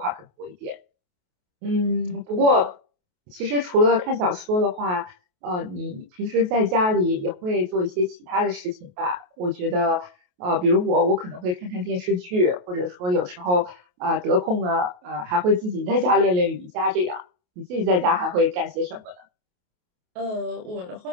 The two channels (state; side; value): late; left; 28 ms